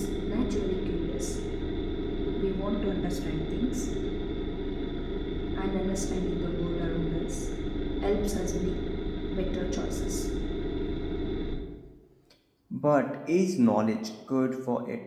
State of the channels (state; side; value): identical; both; correlation 1.00